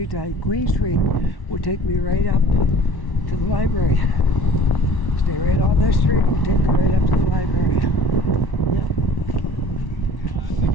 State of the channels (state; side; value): late; right; 1.1 ms